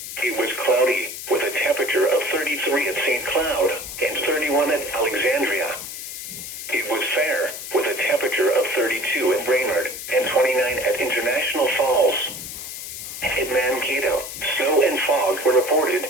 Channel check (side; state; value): left; noise; hiss, 9 dB below the sound